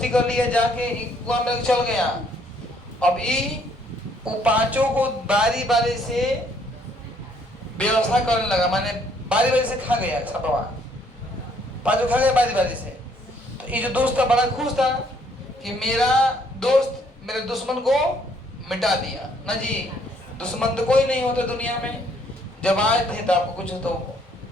कर लिया, जाके कुआं में चल गया। अब ये वो 5 को बारी बारी से व्यवस्था करने लगा, माने बारी बारी से खा गया सपवा, 5 खा गया बारी बारी से। तो ये जो दोस्त था बड़ा खुश था कि मेरा दोस्त मेरे दुश्मन को मिटा दिया ना जी। दुश्मन तो कोई नहीं होता दुनिया में, जब आए थे तो आपको कुछ तो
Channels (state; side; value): normal; both; correlation 0.66